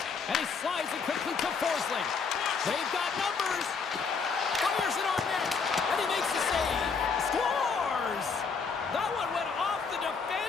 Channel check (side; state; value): right; quieter; 5.4 dB